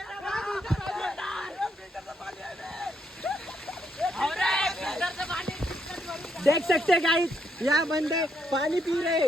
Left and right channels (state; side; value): normal; both; correlation 0.78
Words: देख सकते हैं गाइस यहाँ बंदे पानी पी रहे